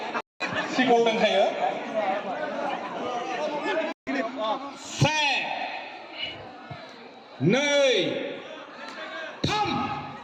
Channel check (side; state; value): both; identical; correlation 1.00